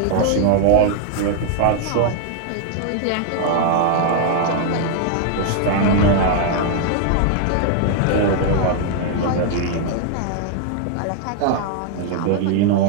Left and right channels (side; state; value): both; different; correlation 0.00